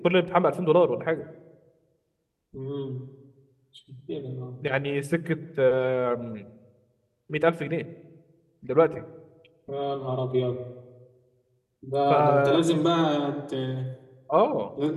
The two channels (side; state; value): both; identical; correlation 1.00